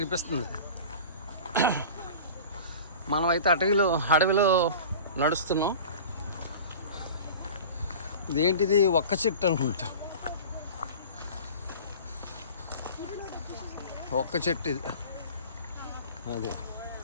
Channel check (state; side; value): inverted; both; correlation -0.38